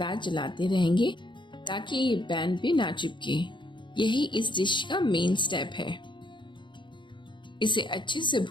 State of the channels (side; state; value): right; late; 0.23 ms